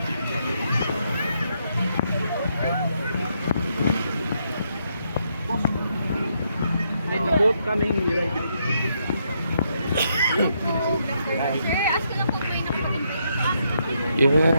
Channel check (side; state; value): both; inverted; correlation -0.77